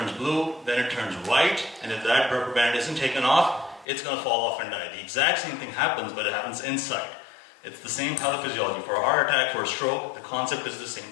blue, then it turns white, and if that rubber band isn't taken off, it's going to fall off and die. The exact same thing happens, but it happens inside. It's the same pathophysiology. For a heart attack, for a stroke, the concept is the same.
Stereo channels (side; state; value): right; drops out; at 3.9 s